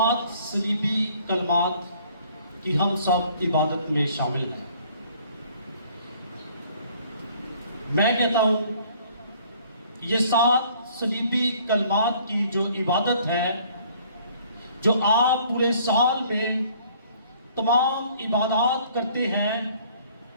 صلیبی کلمات کی ہم سب عبادت میں شامل ہیں۔ میں کہتا ہوں یہ 7 صلیبی کلمات کی جو عبادت ہے، جو آپ پورے سال میں تمام عبادات کرتے ہیں،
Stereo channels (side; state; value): both; inverted; correlation -0.57